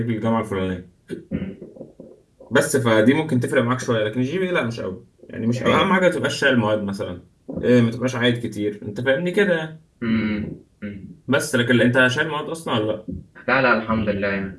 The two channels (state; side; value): identical; both; correlation 1.00